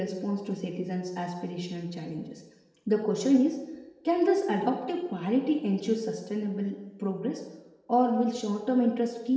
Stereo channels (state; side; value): identical; both; correlation 1.00